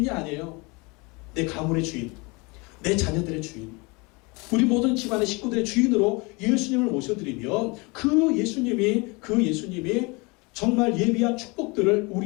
아니에요. 내 가문의 주인, 내 자녀들의 주인, 우리 모든 집안의 식구들의 주인으로 예수님을 모셔드리면 그 예수님이 정말 예비한 축복들을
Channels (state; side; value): quieter; right; 27.5 dB